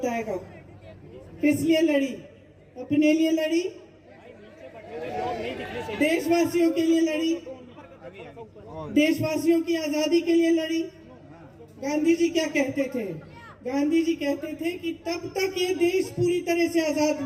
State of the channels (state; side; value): identical; both; correlation 1.00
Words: किस लिए लड़ी? अपने लिए लड़ी, देशवासियों के लिए लड़ी, देशवासियों की आजादी के लिए लड़ी। गांधी जी क्या कहते थे? गांधी जी कहते थे कि तब तक ये देश पूरी तरह से आजाद